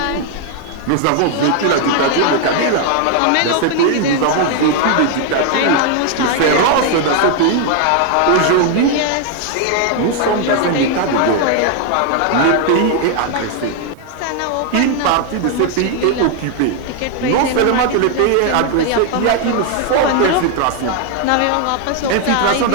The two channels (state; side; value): different; both; correlation 0.01